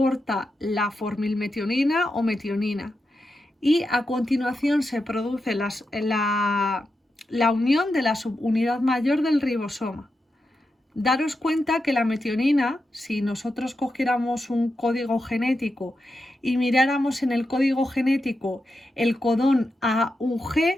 la formilmetionina o metionina y a continuación se produce la unión de la subunidad mayor del ribosoma. Daros cuenta que la metionina, si nosotros cogiéramos un código genético y miráramos en el código genético el codón AUG,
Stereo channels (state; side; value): normal; both; correlation 0.88